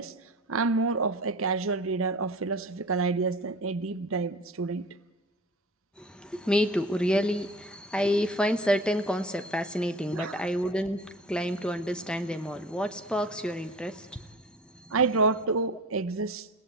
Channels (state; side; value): normal; both; correlation 0.39